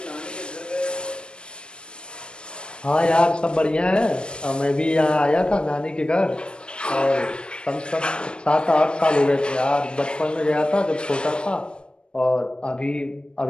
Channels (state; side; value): late; right; 0.054 ms